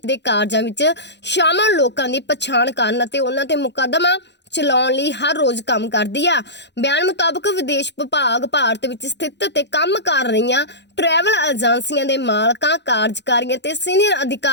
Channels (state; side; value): late; right; 0.50 ms